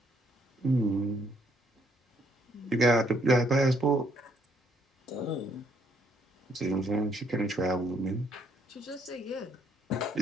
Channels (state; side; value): normal; both; correlation 0.68